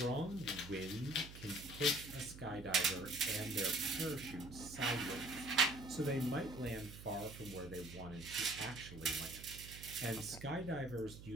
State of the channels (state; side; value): noise; right; hum, 14 dB below the sound